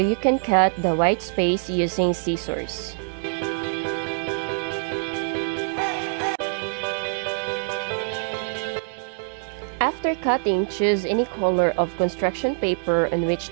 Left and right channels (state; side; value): silent; left; 62 dB below the other